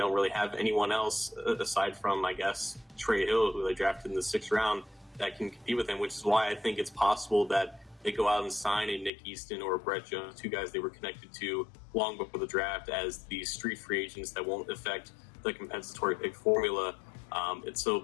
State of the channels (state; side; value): drops out; right; at 9.1 s